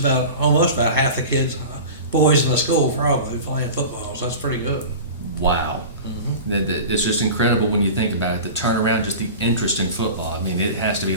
almost about half the kids, boys in the school probably playing football. So that's pretty good. Wow. Mm-hmm. It's just incredible when you think about it. The turnaround, just the interest in football. I mean, it has to be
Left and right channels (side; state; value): both; inverted; correlation -0.34